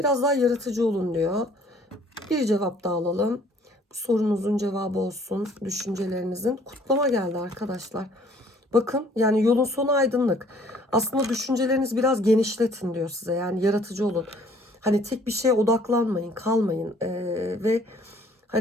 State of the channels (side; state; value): both; normal; correlation 0.58